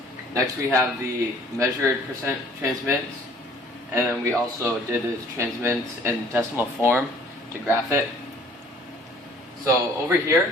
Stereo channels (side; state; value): both; normal; correlation 0.55